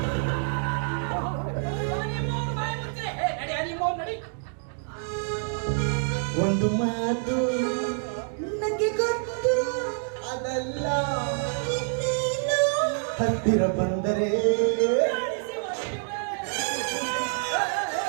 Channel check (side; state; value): left; silent; 60 dB below the other